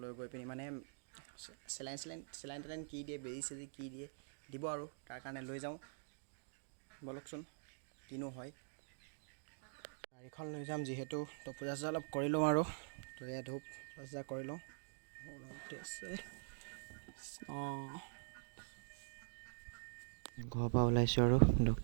লৈ গৈ পিনি মানে চেলাইন কি দিয়ে, বেজি চেজি কি দিয়ে দিব আৰু তাৰ কাৰণে লৈ যাওঁ। বলকচোন কিনো হয়। গাড়ীখন লৈ যাম যিহেতু, তো পূজা চূজা অলপ কৰি লওঁ আৰু তো এয়া ধূপ পূজা কৰি লওঁ। ঘৰৰ পৰা ওলাইছোঁ আৰু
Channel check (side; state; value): left; silent; digital silence